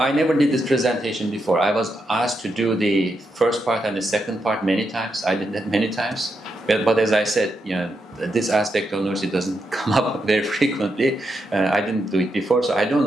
never did this presentation before. I was asked to do the first part and the second part many times. I did that many times. But as I said, this aspect of Nursi doesn't come up very frequently. I didn't do it before, so I don't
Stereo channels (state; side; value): normal; both; correlation 0.83